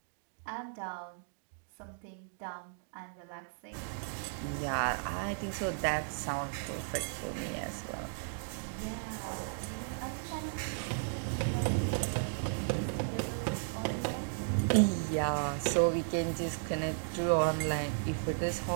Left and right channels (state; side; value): silent; left; digital silence